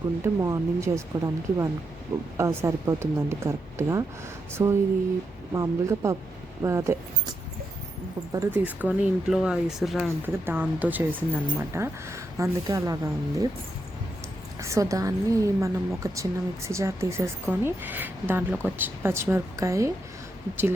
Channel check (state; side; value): normal; both; correlation 0.83